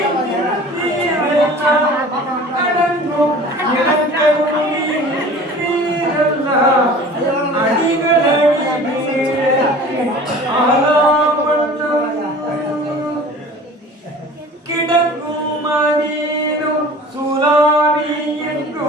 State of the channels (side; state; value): both; normal; correlation 0.42